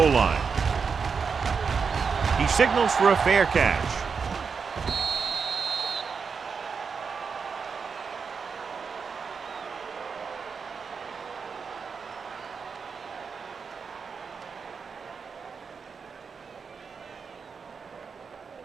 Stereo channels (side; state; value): left; quieter; 5.6 dB